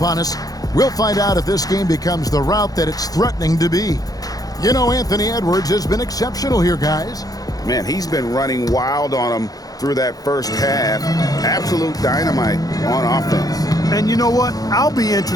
us, we'll find out if this game becomes the route that it's threatening to be. You know, Anthony Edwards has been exceptional here, guys. Man, he's been running wild on them through that first half. Absolute dynamite on offense. And you know what? I'll be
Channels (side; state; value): right; late; 0.18 ms